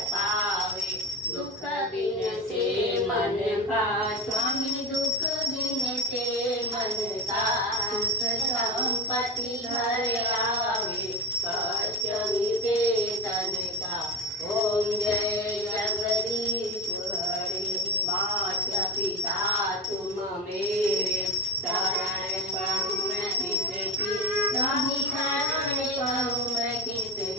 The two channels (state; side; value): normal; both; correlation 0.22